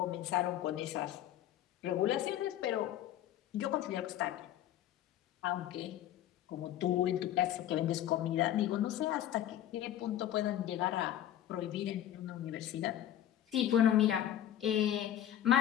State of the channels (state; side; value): quieter; right; 11.7 dB